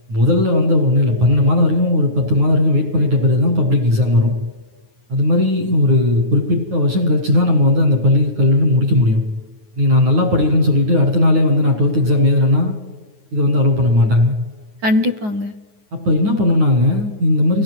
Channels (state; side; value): late; left; 9.5 ms